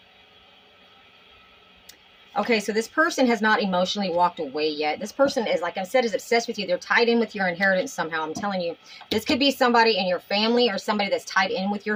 Okay, so this person has not emotionally walked away yet. This person is, like I said, is obsessed with you. They're tied in with your inheritance somehow. I'm telling you, this could be somebody in your family or somebody that's tied in with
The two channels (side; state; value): both; identical; correlation 1.00